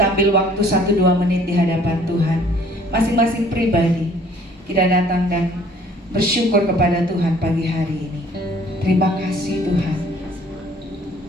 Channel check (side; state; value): both; normal; correlation 0.56